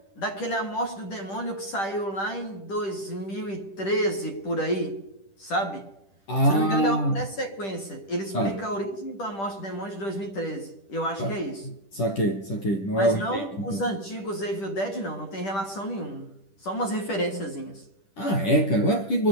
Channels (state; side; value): late; right; 10 ms